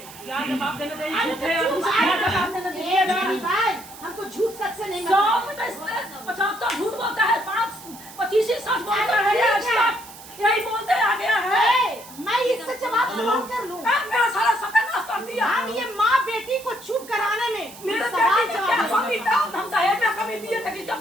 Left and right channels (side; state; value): right; noise; hiss, 17 dB below the sound